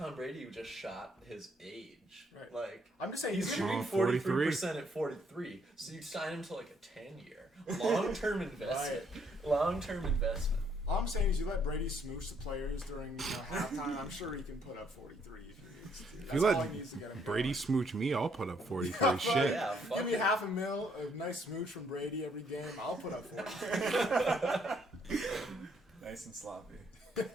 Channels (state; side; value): normal; both; correlation 0.69